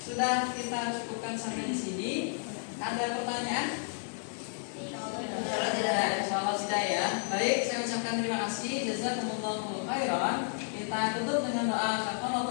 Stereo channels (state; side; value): silent; right; 56 dB below the other